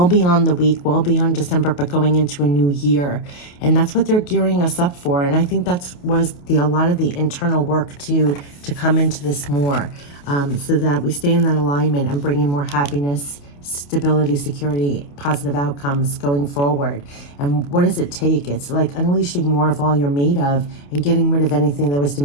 beyond the week, well beyond December, but going into a new year. And that's what they're gearing us up for. And I think was a lot of the internal work to come into this more, so that we stay in that alignment and bring in more happiness, stability, security, positive outcomes going forward. And what does it take? It's like unleashing more of all you're made of and getting rid of anything that was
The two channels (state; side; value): late; right; 28 ms